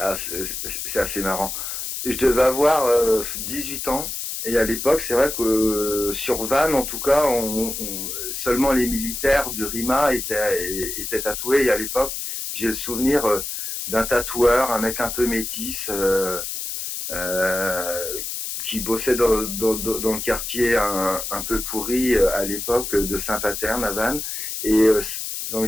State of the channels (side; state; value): left; noise; hiss, 5 dB below the sound